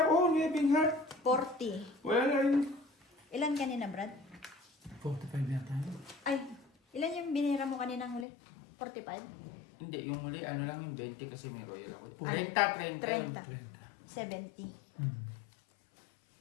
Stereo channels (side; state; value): right; drops out; at 8.2 s